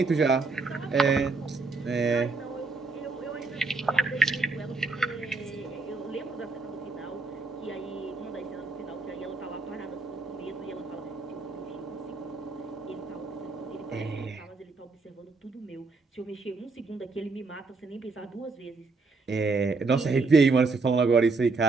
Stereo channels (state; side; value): quieter; left; 4.0 dB